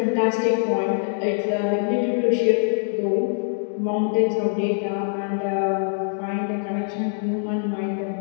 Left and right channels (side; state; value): right; silent; digital silence